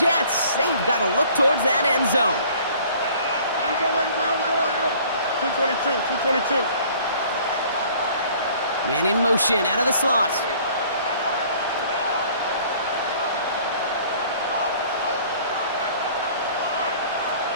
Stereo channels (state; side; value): inverted; both; correlation -0.53